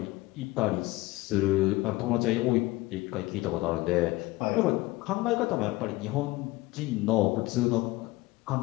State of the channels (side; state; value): right; quieter; 20.1 dB